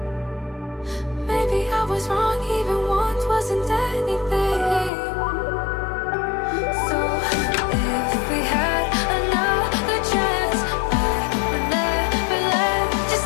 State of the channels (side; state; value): right; drops out; at 4.9 s